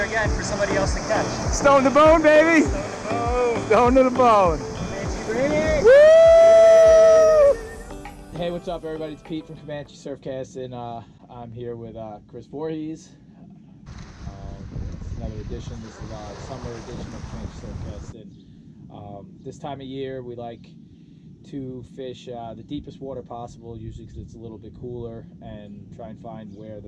again for somebody else to catch. Stone to bone, baby. Stone to the bone. Woo! Hey, what's up, everybody? It's Pete from Comanche Surfcsting. I'm here with Chris Voorhies. It's another edition. This is our summer edition of Comanche Surfcsting. This time of year, we like to fish the deepest water possible, usually because it's a little bit cooler, and try and find where the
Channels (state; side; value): identical; both; correlation 1.00